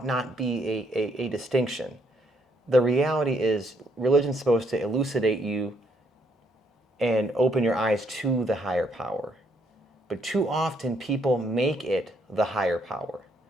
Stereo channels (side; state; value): both; normal; correlation 0.71